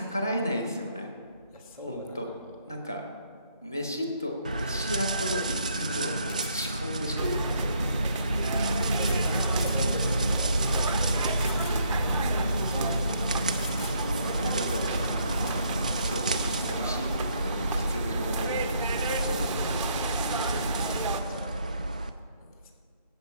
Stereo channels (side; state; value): both; inverted; correlation -0.70